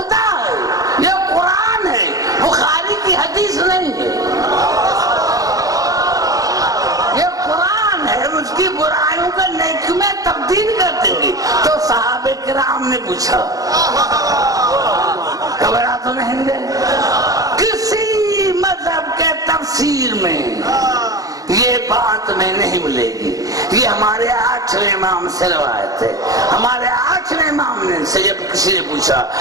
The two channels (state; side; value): late; left; 0.17 ms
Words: ہے, یہ قرآن ہے, بخاری کی حدیث نہیں ہے. یہ قرآن ہے, اس کی برائیوں کو نیکیوں میں تبدیل کر دیں گے. تو صحابہ کرام نے پوچھا, گھبرا تو نہیں گئے؟ کسی مذہب کے تفسیر میں یہ بات میں نہیں ملے گی. یہ ہمارے 8ویں امام سے روایت ہے. ہمارے 8ویں امام نے سے جب کسی نے پوچھا